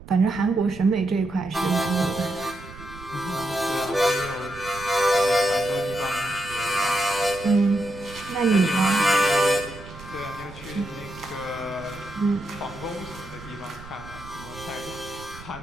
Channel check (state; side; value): noise; right; rumble, 16 dB below the sound